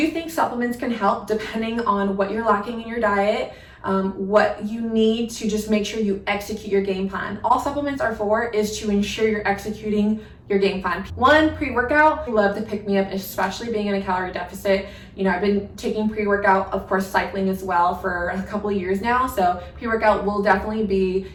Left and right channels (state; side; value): identical; both; correlation 1.00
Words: think supplements can help depending on what you're lacking in your diet, what you need to just make sure you execute your game plan. All supplements are for is to ensure you're executing your game plan. 1, pre-workout. I love to pick me up, especially being in a calorie deficit. You know, I've been taking pre-workout, of course, cycling as well for a couple of years now. So pre-workout will definitely be